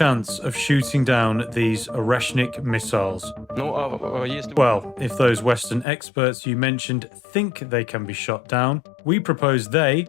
of shooting down these Oreshnik missiles. Well, if those Western experts you mentioned think they can be shot down, we propose they,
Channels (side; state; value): right; drops out; at 5.9 s